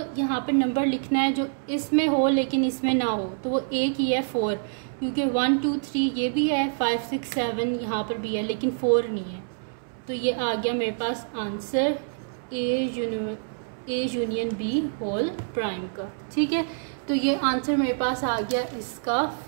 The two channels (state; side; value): silent; left; 61 dB below the other